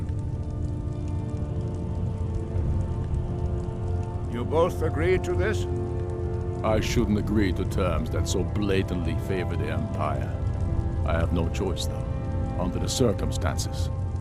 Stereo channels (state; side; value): identical; both; correlation 1.00